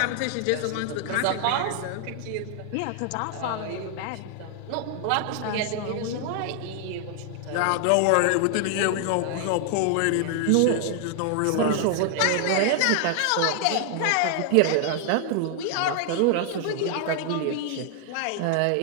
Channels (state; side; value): different; both; correlation 0.00